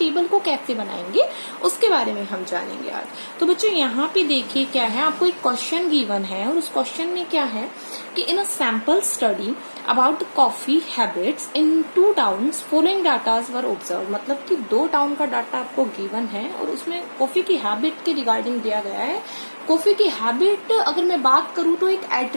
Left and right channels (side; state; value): both; inverted; correlation -1.00